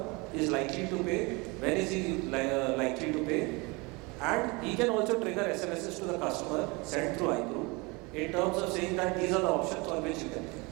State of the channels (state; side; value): quieter; left; 26.9 dB